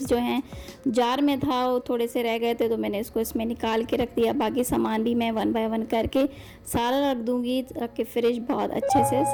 जो हैं जार में था, वो थोड़े से रह गए थे, तो मैंने इसको इसमें निकाल के रख दिया। बाकी सामान भी मैं 1 बाय 1 करके सारा रख दूँगी ताकि फ्रिज बहुत अच्छे से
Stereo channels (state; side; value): identical; both; correlation 1.00